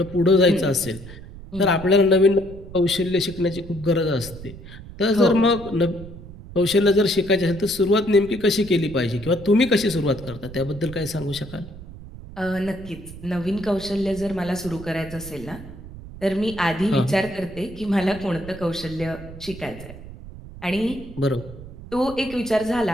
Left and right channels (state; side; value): noise; right; rumble, 15 dB below the sound